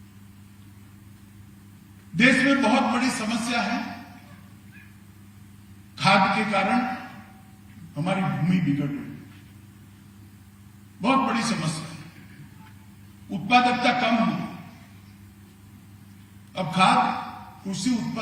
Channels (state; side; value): identical; both; correlation 1.00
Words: देश में बहुत बड़ी समस्या है. खाद के कारण हमारी भूमि बिगड़ रही है. बहुत बड़ी समस्या है. उत्पादकता कम हुई. अब खाद कृषि